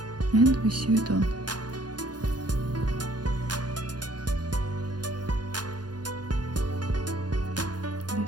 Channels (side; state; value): left; late; 0.70 ms